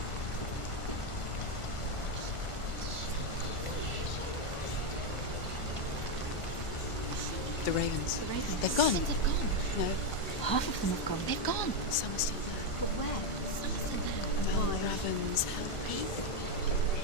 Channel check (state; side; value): late; right; 1.4 ms